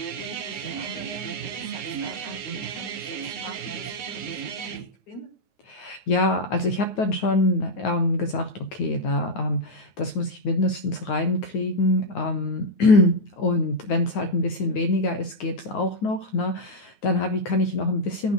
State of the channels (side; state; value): right; late; 9.5 ms